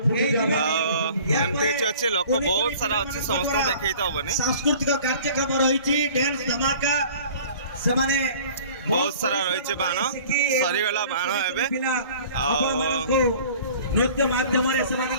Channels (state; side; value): inverted; both; correlation -0.47